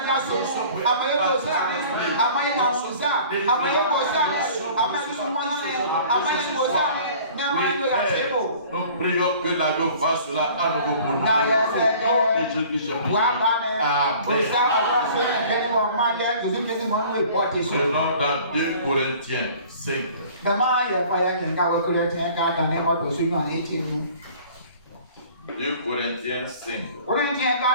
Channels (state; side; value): inverted; both; correlation -0.48